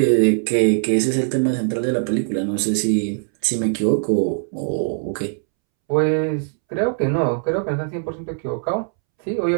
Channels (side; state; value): left; silent; 65 dB below the other